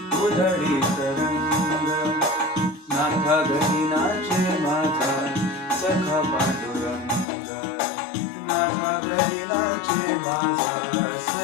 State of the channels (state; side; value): drops out; right; at 7.2 s